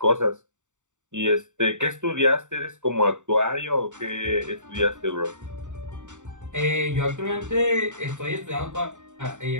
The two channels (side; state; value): left; late; 0.85 ms